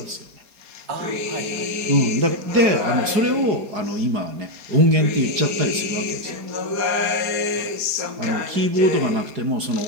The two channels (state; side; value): late; left; 4.8 ms